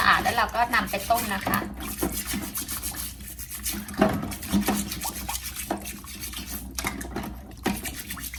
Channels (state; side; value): identical; both; correlation 1.00